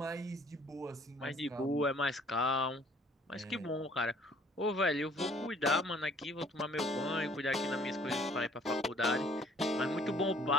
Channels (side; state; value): both; normal; correlation 0.58